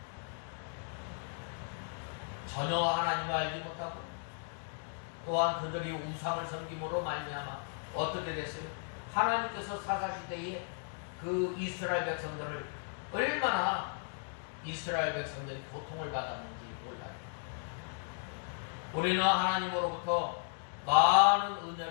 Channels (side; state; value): right; silent; 54 dB below the other